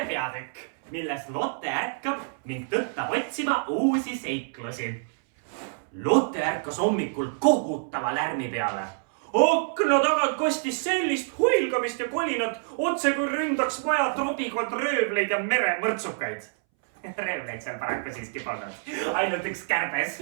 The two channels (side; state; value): left; silent; 60 dB below the other